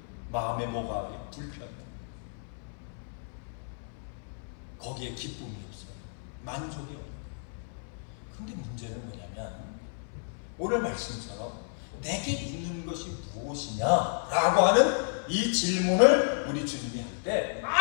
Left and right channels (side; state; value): right; silent; 57 dB below the other